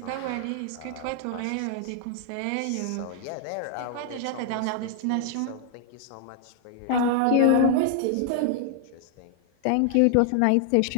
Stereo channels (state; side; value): different; both; correlation 0.00